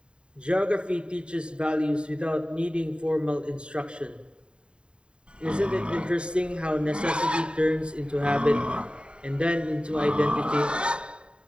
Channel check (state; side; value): late; left; 0.052 ms